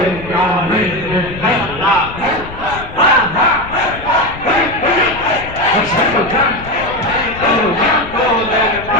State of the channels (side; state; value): left; noise; rumble, 14 dB below the sound